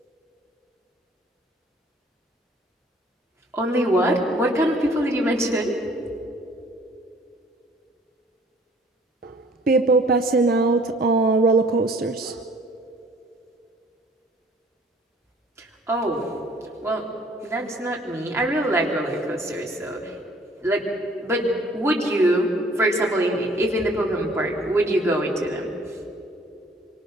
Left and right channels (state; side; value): normal; both; correlation 0.56